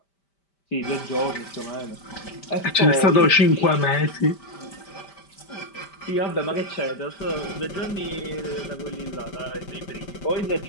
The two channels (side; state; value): right; late; 5.1 ms